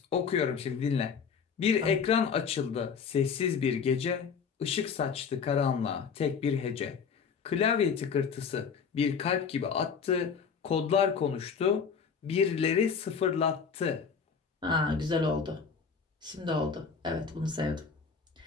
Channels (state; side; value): quieter; right; 6.1 dB